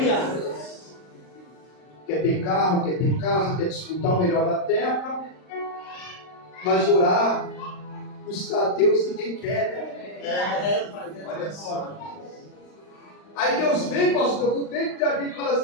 Quer ter carro, quer ter casa, quer desfrutar o melhor da terra, mas orar, buscar a Deus ninguém quer, né? Olha só. Aí Deus vem, pastor, do tempo de Davi e fala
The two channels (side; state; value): right; late; 39 ms